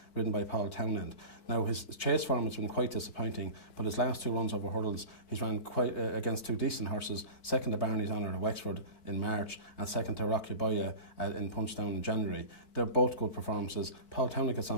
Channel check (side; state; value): right; late; 4.6 ms